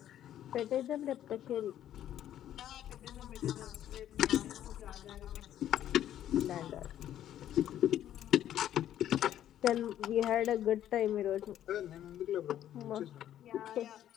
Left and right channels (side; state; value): right; quieter; 11.4 dB